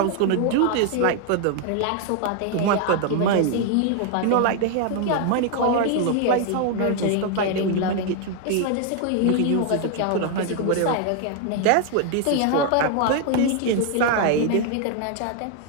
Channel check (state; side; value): different; both; correlation 0.00